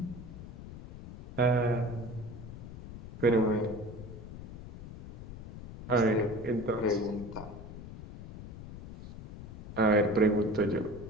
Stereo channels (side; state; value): left; noise; rumble, 12 dB below the sound